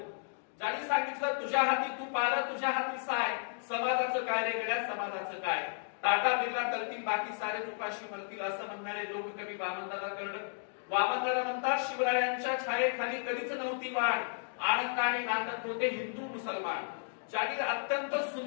ज्यांनी सांगितलं तुझ्या हाती तू पाल, तुझ्या हाती साय, समाजाचं काय रे गड्या, समाजाचं काय, टाटा बिर्ला करतील बाकी सारे उपाशी मरतील, असं म्हणणारे लोककवी वामनदादा कर्डक. वामनदादा म्हणतात शिवरायांच्या छायेखाली कधीच नव्हती वाढ, आनंदाने नांदत होते हिंदू मुसलमान. ज्यांनी अत्यंत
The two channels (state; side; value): silent; right; digital silence